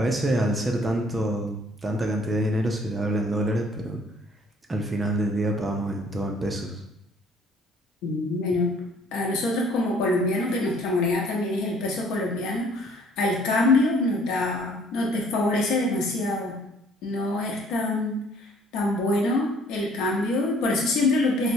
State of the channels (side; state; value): both; normal; correlation 0.58